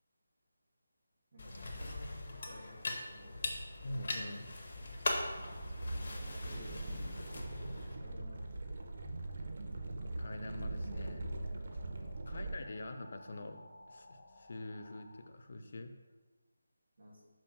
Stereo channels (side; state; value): both; inverted; correlation -0.91